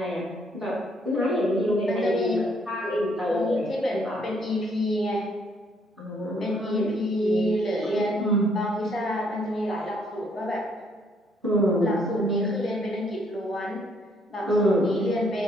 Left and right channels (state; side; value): normal; both; correlation 0.68